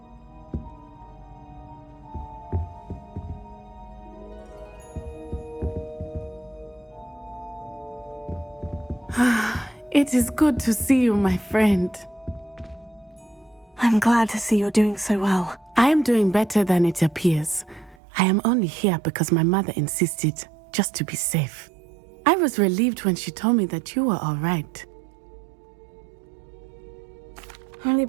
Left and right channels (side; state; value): left; drops out; at 17.9 s